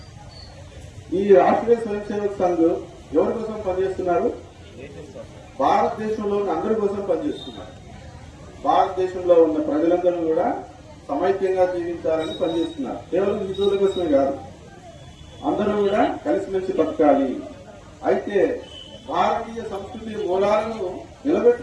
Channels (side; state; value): both; identical; correlation 1.00